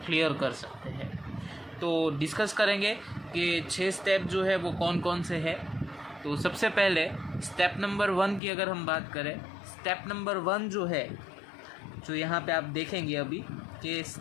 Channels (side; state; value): right; drops out; at 8.4 s